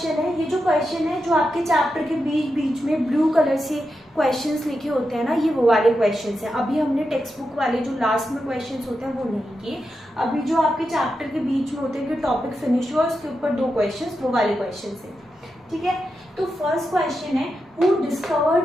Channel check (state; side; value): normal; both; correlation 0.88